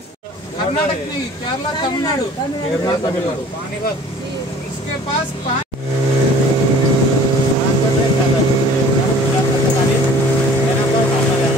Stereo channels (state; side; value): normal; both; correlation 0.49